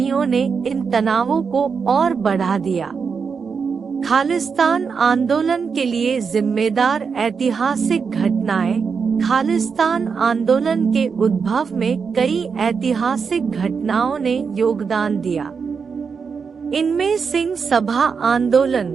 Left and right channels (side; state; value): left; quieter; 5.7 dB